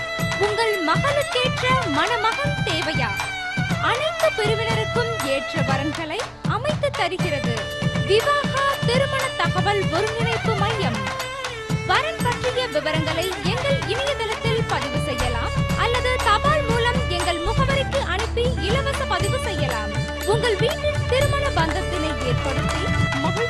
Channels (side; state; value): both; identical; correlation 1.00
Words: உங்கள் மகளுக்கேற்ற மணமகன் தேவையா? அனைத்து பிரிவினருக்கும் ஏற்ற வரன்களை அமைத்து தருகிறது விவாகா திருமண தகவல் ஒருங்கிணைப்பு மையம். வரன் பற்றிய விவரங்களை எங்கள் இணையதளத்தில் பதிவு செய்யலாம் அல்லது தபால் மூலம் எங்கள் முகவரிக்கு அனுப்பி இலவச பதிவு செய்யலாம். உங்கள் வீட்டில் திருமண பந்தத்தினை ஏற்படுத்தி